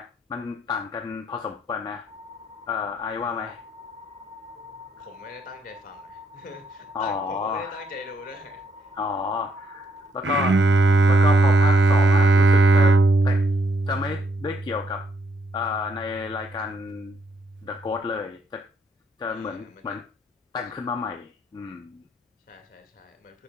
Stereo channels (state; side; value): normal; both; correlation 0.74